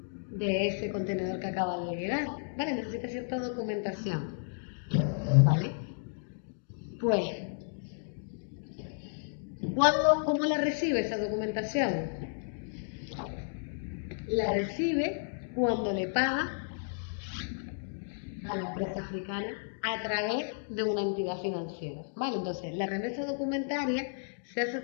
de ese contenedor que acaba de llegar, ¿vale? Necesita cierta documentación, ¿vale? Pues, ¿cómo la recibe esa documentación? La recibe cuando le paga a la empresa africana a través de una entidad financiera, ¿vale? Entonces, la remesa documentaria se hace a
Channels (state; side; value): silent; right; digital silence